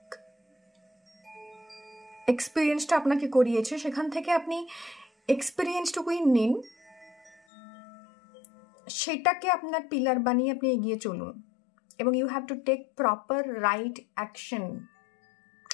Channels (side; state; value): right; drops out; at 7.4 s